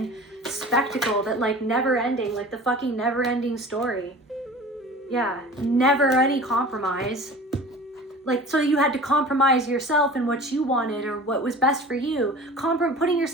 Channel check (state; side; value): normal; both; correlation 0.40